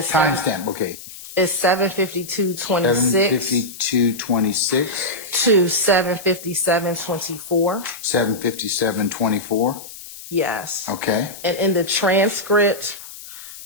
Timestamp. Okay. Is 752:26 7:52:26 to 7:57:24. 7:57:24. Yes. Okay. And in the transcript,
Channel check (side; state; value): left; noise; hiss, 15 dB below the sound